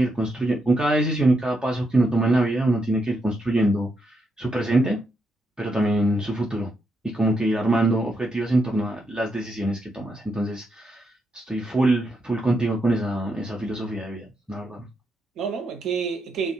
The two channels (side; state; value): both; normal; correlation 0.81